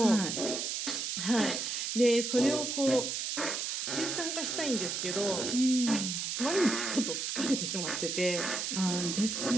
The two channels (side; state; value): right; noise; hiss, 2 dB below the sound